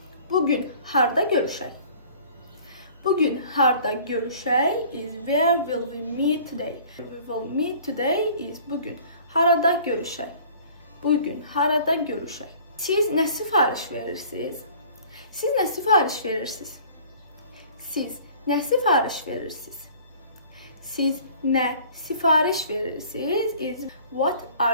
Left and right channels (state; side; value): inverted; both; correlation -0.49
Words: Bugün harda görüşək? Bugün harda görüşək is where will we meet today? We will meet today is bugün. Harada görüşək? Bugün harada görüşək? Siz nə sifariş verirsiniz? Siz nə sifariş verirsiniz? Siz nə sifariş verirsiniz? Siz nə sifariş verirsiniz is what